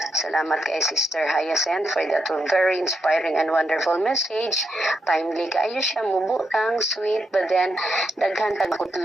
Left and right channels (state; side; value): normal; both; correlation 0.82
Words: Salamat kay Sister Hyacinth for that very inspiring and wonderful message. Timely kaayo siya, mubutang, sweet, but then daghan kag